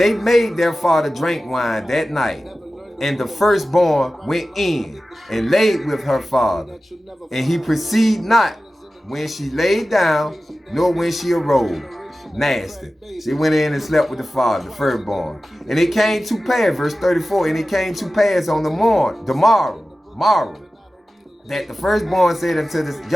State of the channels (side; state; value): both; normal; correlation 0.95